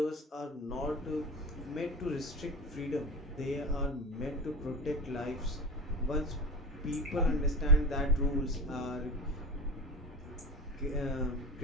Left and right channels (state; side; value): normal; both; correlation 0.29